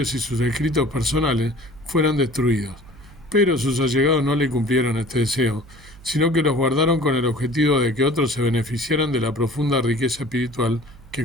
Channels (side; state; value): right; noise; hum, 22 dB below the sound